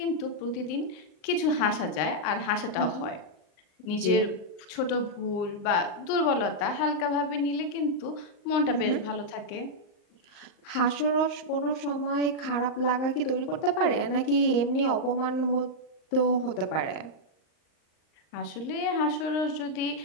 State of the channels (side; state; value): right; late; 39 ms